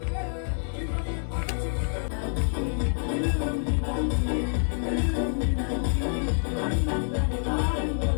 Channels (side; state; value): right; silent; digital silence